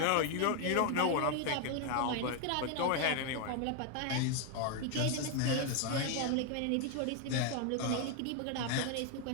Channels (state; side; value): different; both; correlation 0.01